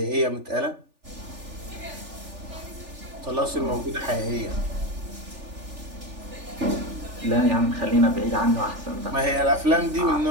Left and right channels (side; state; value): left; late; 3.4 ms